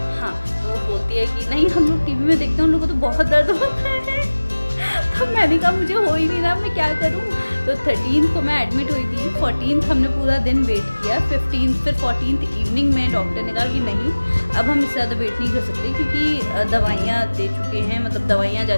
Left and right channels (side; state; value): both; inverted; correlation -1.00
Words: हाँ, तो वो बोलती है कि नहीं हम लोग टीवी में देखते हैं, उन लोगों को तो बहुत दर्द होता है। तो मैंने कहा मुझे हो ही नहीं रहा, मैं क्या करूँ। तो 13 को मैं एडमिट हुई थी, 14 हमने पूरा दिन वेट किया, 15 फिर 14 इवनिंग में डॉक्टर ने कहा कि नहीं अब हम इससे ज़्यादा वेट नहीं कर सकते, क्योंकि दवाइयाँ दे चुके हैं, मतलब दवाइयाँ जा